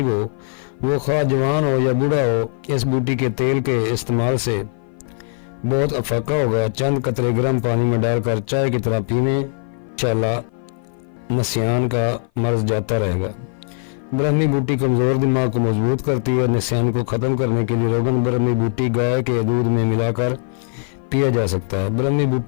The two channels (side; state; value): right; silent; 56 dB below the other